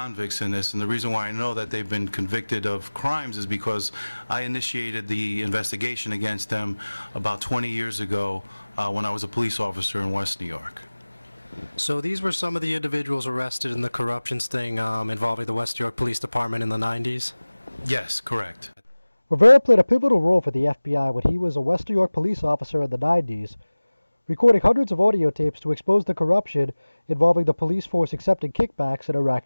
in this, and the reason why I know that they've been convicted of crimes is because I initiated the investigation against them about 20 years ago when I was a police officer in West New York. So these were some of the individuals arrested in the corruption sting involving the West New York Police Department in the 90s? Yes, correct. Rivera played a pivotal role for the FBI when he was a West New York police officer in the 90s, recording hundreds of audio tapes to expose the corruption involving the police force accepting kickbacks in a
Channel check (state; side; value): inverted; both; correlation -1.00